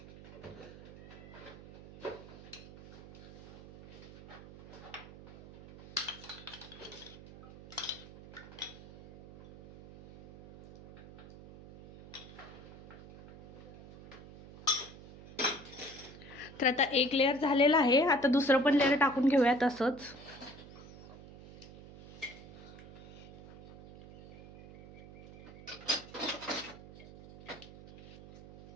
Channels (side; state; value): right; noise; hum, 17 dB below the sound